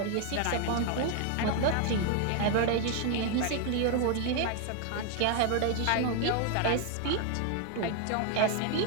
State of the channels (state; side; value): different; both; correlation 0.00